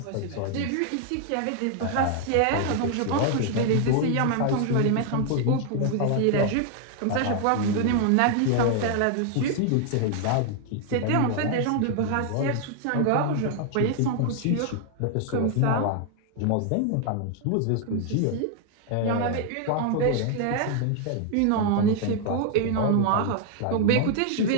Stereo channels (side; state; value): both; different; correlation 0.00